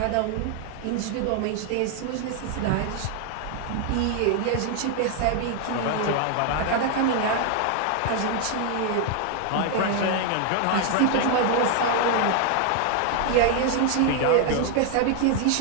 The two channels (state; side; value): different; both; correlation 0.00